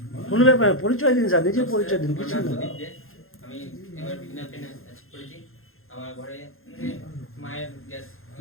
কোনো ব্যাপার না, পরিচয় দিন স্যার, নিজের পরিচয় দিন, কিছু না। আমি এবার বিগিনার পেন অ্যাচিভ করেছি। আমার ঘরে মায়ের গ্যাস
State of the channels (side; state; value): right; late; 0.61 ms